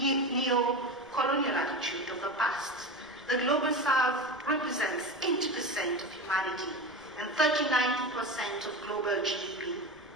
attitude of the past. The Global South represents 80% of humanity and 39% of global GDP.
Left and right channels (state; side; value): noise; right; rumble, 27 dB below the sound